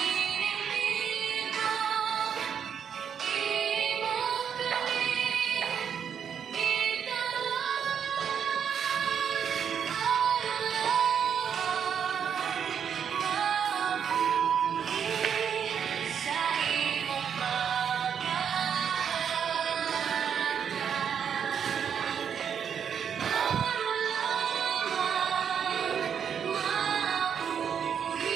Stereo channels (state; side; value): quieter; left; 7.8 dB